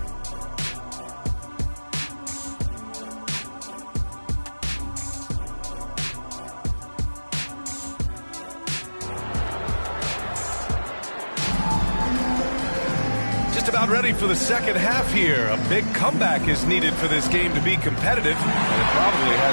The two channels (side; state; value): both; inverted; correlation -1.00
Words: About ready for the second half here. A big comeback is needed for this game to be competitive, and it probably